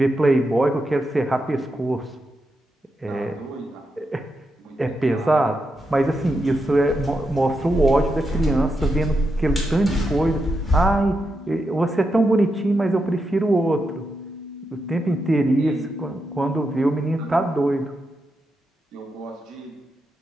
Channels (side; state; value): both; normal; correlation 0.85